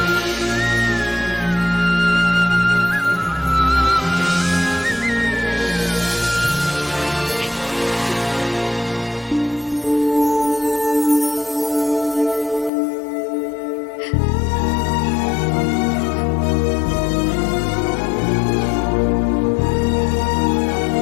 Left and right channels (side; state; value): right; drops out; at 12.7 s